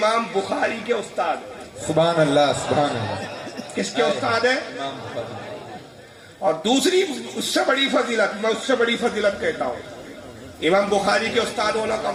بخاری کے استاد ہیں. سبحان اللہ. سبحان اللہ. کس کے استاد ہیں؟ اور دوسری اس سے بڑی فضیلت، میں اس سے بڑی فضیلت کہتا ہوں، امام بخاری کے استاد ہونا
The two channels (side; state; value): both; identical; correlation 1.00